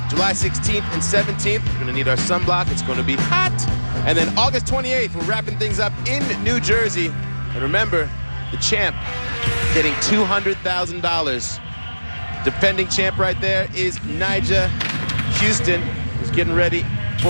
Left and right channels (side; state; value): both; inverted; correlation -1.00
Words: July 16th and 17th. We're going to need our sunblock. It's going to be hot. And then August 28th, we're wrapping things up in New Jersey. And remember, the champ getting $200,000. Defending champ right there is Nyjah Huston, who's getting ready